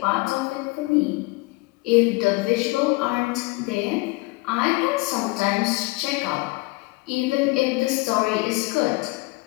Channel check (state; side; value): quieter; right; 24.7 dB